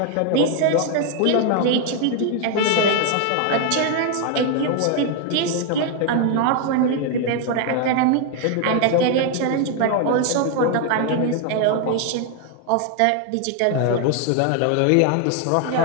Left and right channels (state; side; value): different; both; correlation 0.00